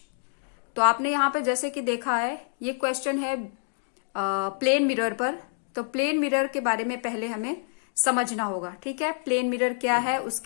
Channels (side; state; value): right; silent; digital silence